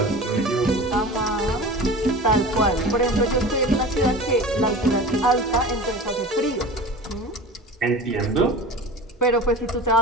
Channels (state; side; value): normal; both; correlation 0.35